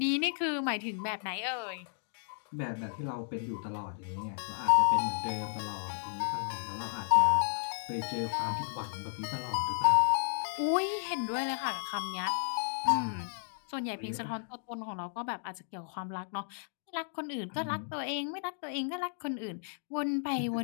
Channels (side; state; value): right; silent; digital silence